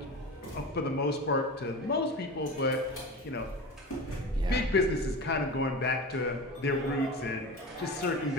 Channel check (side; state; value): both; normal; correlation 0.29